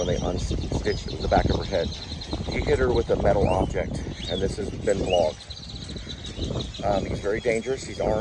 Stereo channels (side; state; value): both; identical; correlation 1.00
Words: they unstitched the back of her head. He hit her with a metal object, and this has been vlogged. He's very dangerous. He's